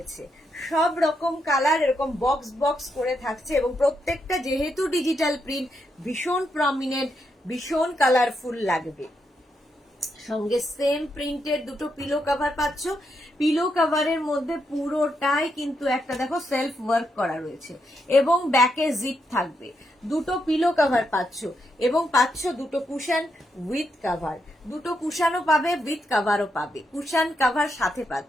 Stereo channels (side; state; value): both; normal; correlation 0.81